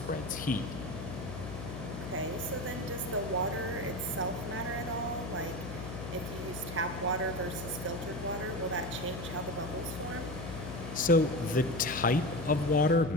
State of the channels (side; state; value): left; noise; hum, 8 dB below the sound